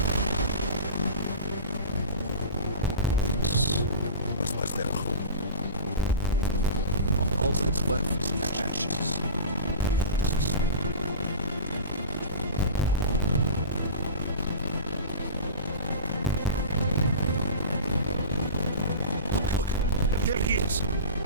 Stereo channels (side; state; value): both; inverted; correlation -0.32